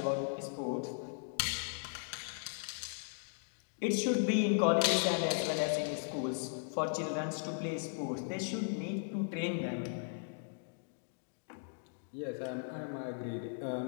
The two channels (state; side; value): silent; right; digital silence